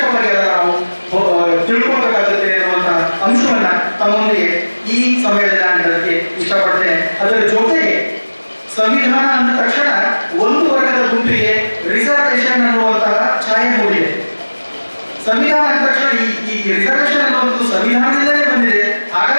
ನಾವು ತಿಳ್ಕೊಬೇಕಾಗುತ್ತೆ ಅನ್ನುವಂತಹ ಅಂಶವನ್ನ ತಮ್ಮೊಂದಿಗೆ ಈ ಸಮಯದಲ್ಲಿ ನಾನು ಹೇಳಕ್ಕೆ ಇಷ್ಟಪಡ್ತೇನೆ. ಅದರ ಜೊತೆಗೆ ಸಂವಿಧಾನ ಅಂದ ತಕ್ಷಣ ಒಂದು ವರ್ಗದ ಗುಂಪಿಗೆ ರಿಸರ್ವೇಶನ್ ಅನ್ನುವಂತಹ ಛಾಯೆ ಮೂಡಿದೆ. ಸಂವಿಧಾನ ಅಂದ ತಕ್ಷಣ ಈ ರಿಸರ್ವೇಶನ್ ಅನ್ನುವಂಥದ್ದು ಸಂವಿಧಾನದಿಂದಲೇ ಬಂದಿದೆ,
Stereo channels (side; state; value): both; inverted; correlation -1.00